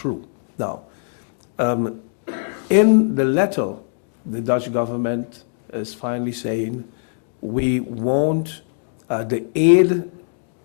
Now, in the letter, the Dutch government is finally saying, we won't, the aid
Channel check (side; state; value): right; silent; 64 dB below the other